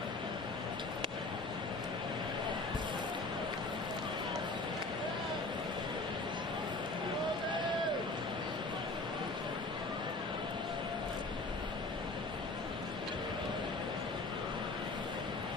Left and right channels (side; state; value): right; quieter; 3.1 dB